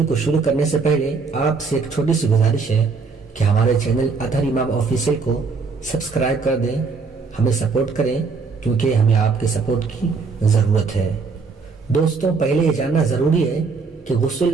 کو شروع کرنے سے پہلے آپ سے ایک چھوٹی سی گزارش ہے کہ ہمارے چینل اطہر امام آفیشیل کو سبسکرائب کر دیں، ہمیں سپورٹ کریں کیونکہ ہمیں آپ کے سپورٹ کی ضرورت ہے۔ دوستوں، پہلے یہ جاننا ضروری ہے کہ غسل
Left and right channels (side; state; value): left; quieter; 4.8 dB